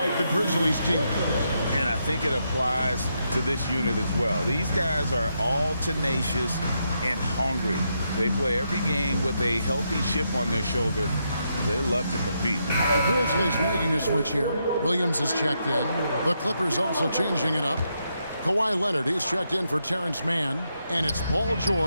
the Grizzlies team. And I think it applies to this unit as well. These guys are all tenacious and hungry. They play every game with a healthy chip on their shoulder. They love to compete. The Grizzlies making a switch here. Williams is checked in. The Clippers also changing it up. Kawhi Leonard, he's checked in for Terrence Mann. And it's Paul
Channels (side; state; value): both; inverted; correlation -0.81